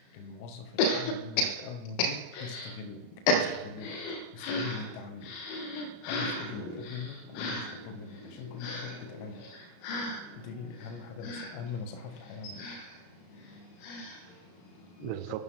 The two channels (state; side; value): late; right; 33 ms